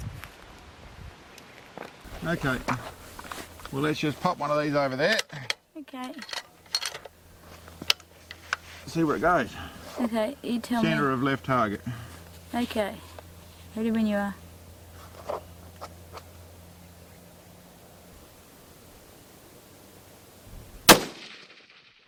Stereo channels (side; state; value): both; identical; correlation 1.00